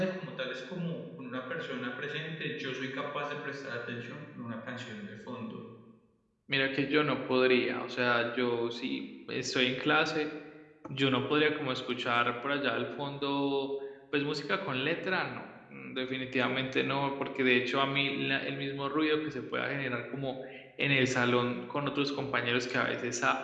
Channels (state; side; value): identical; both; correlation 1.00